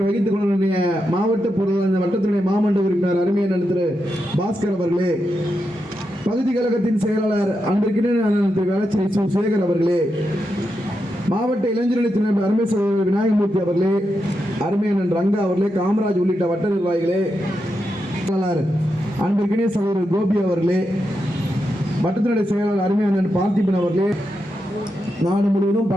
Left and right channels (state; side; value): normal; both; correlation 0.86